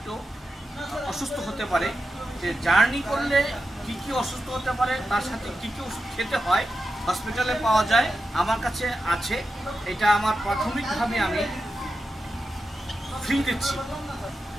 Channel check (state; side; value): normal; both; correlation 0.90